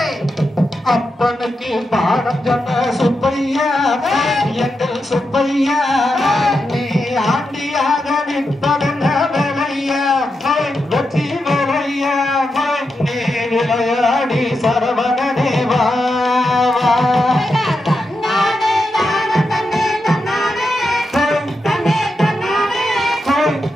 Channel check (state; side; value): normal; both; correlation 0.87